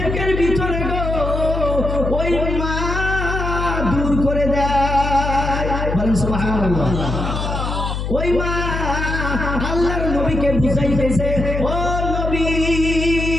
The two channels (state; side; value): noise; left; hum, 3 dB below the sound